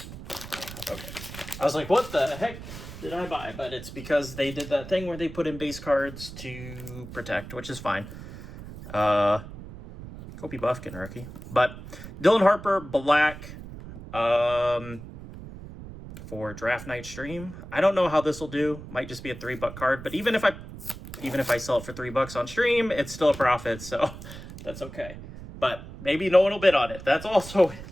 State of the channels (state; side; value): noise; right; rumble, 13 dB below the sound